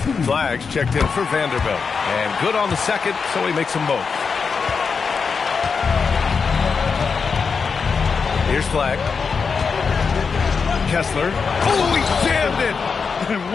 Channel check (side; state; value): right; quieter; 5.4 dB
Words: Flags checked in for Vanderbilt. And good on the second, so he makes them both. Here's Flag. Kessler. Oh, he jammed it! And